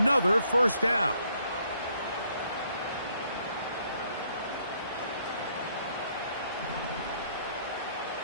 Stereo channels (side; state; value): both; inverted; correlation -0.68